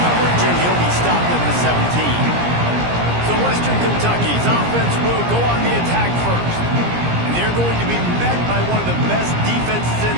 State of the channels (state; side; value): late; left; 17 ms